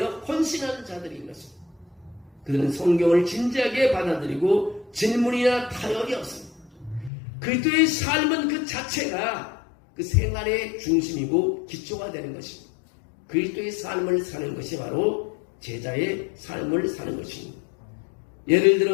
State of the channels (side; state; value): right; drops out; at 7.1 s